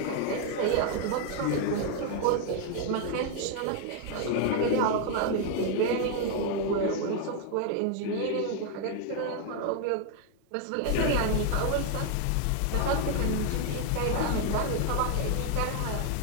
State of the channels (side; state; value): both; different; correlation 0.00